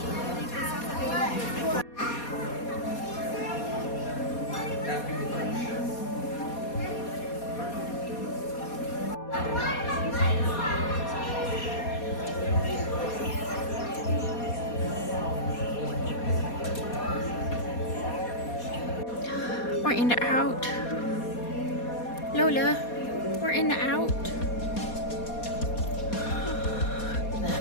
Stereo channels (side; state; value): right; late; 4.2 ms